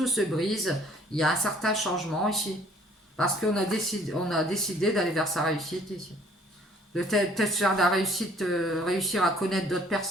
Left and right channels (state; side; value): normal; both; correlation 0.58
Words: se brise. Il y a un certain changement ici, parce on a décidé d'aller vers sa réussite ici. De peut-être faire de la réussite, réussir à connaître d'autres